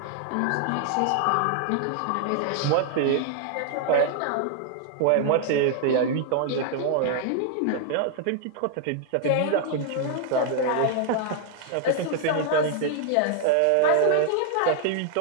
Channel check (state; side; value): different; both; correlation 0.00